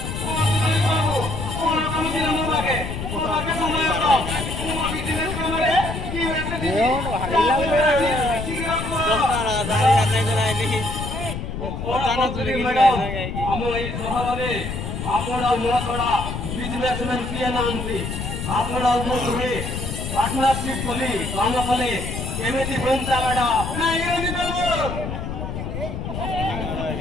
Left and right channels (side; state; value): left; noise; rumble, 5 dB below the sound